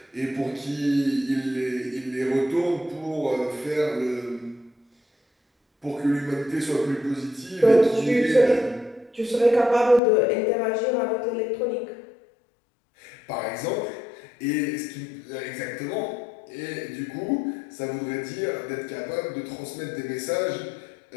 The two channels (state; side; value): drops out; right; at 10.0 s